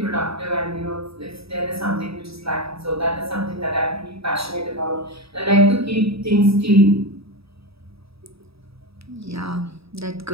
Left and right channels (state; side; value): late; left; 0.77 ms